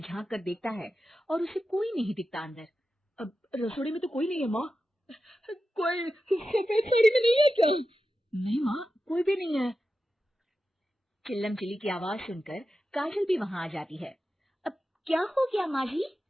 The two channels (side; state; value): both; normal; correlation 0.91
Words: झांक कर देखता है और उसे कोई नहीं दिखता अंदर। अब रसोई में तो कोई नहीं है माँ। कोई सफेद साड़ी में नहीं है क्या? नहीं माँ, कोई भी नहीं है। चिल्लम चिल्ली की आवाज सुनकर काजल भी वहां आ जाती है। अब क्या हो गया माँ जी?